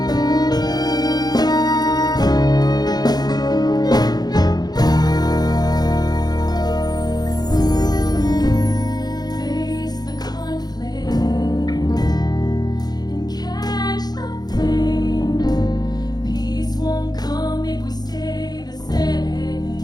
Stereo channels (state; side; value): late; right; 0.19 ms